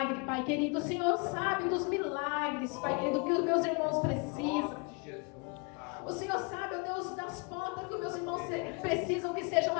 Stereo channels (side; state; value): right; quieter; 33.0 dB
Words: Pai querido. O Senhor sabe dos milagres, Pai querido, que os meus irmãos precisam. O Senhor sabe, ó Deus, das portas que os meus irmãos precisam que sejam